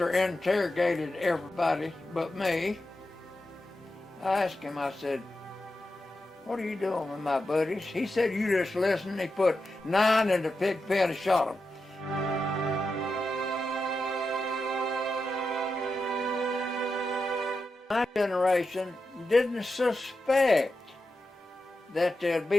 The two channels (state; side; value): normal; both; correlation 0.89